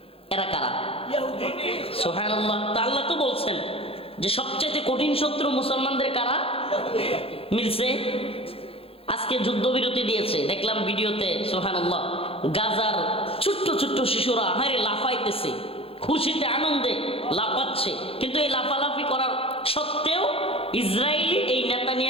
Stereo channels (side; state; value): right; late; 0.27 ms